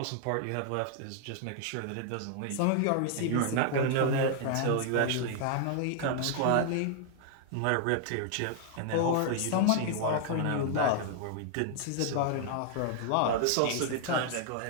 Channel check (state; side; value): different; both; correlation 0.00